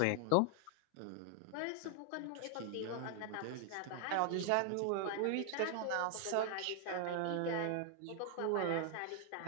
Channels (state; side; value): different; both; correlation 0.00